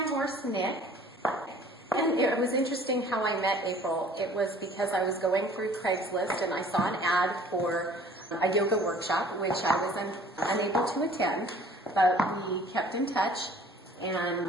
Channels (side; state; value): both; normal; correlation 0.52